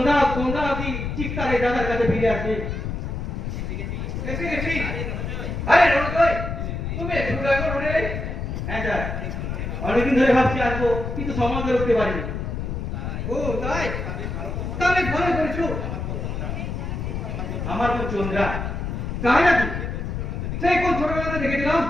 কি ঠিক তার এই দাদার কাছে ফিরে আসবে। এসে গেছি। আরে রোজই তুমি শুরু এখন উঠে হ্যাঁ স্যার, অনেকদিন ধরে ভাবছি আসবো কিন্তু সময় করে উঠতে পারিনি। ও তাই, তাহলে ভালো করেছো। আমার বোন চন্দ্রা তাই নাকি? সেই কোন ছোটবেলাতে দেখেছিলাম।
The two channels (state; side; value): noise; left; rumble, 4 dB below the sound